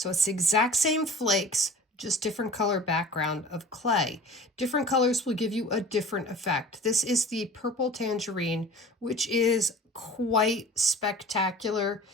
it's the exact same flakes, just different color background of clay. Different colors will give you a different effect. This is the purple tangerine, which is quite spectacular.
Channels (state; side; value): normal; both; correlation 0.42